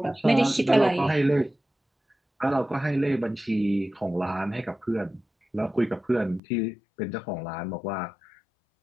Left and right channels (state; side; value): drops out; right; at 6.4 s